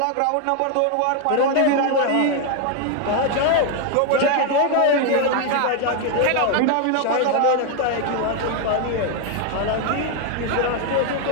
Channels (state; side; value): different; both; correlation 0.01